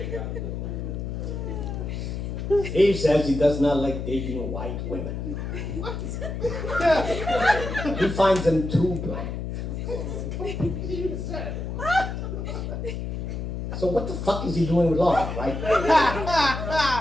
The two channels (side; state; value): left; noise; hum, 5 dB below the sound